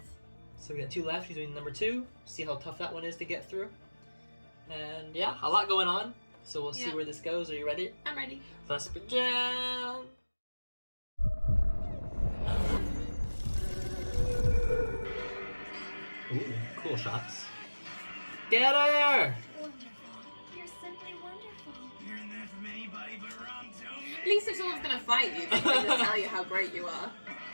So we got 2 left. She's doing number 2. See how tough that one is to get through. And yeah, a lot going on. So we'll see where this goes. Are you ready? I'm ready. Let's begin! Ooh, cool shots. Get her! Wonderful. You're simply wonderful. Hearing that from anybody but Rom Tomaleek. At least if someone's gonna fight you, they can just tell you how great you are.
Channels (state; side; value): inverted; both; correlation -1.00